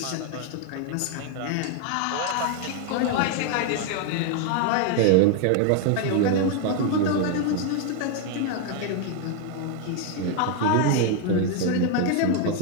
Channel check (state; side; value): different; both; correlation 0.01